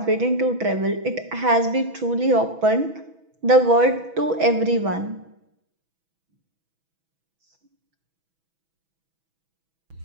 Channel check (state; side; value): late; left; 6.1 ms